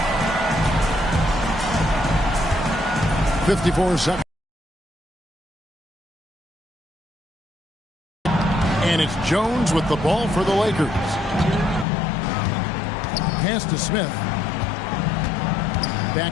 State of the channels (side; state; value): right; drops out; at 11.9 s